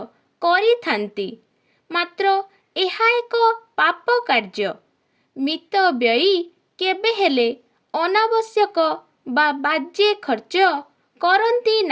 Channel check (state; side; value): identical; both; correlation 1.00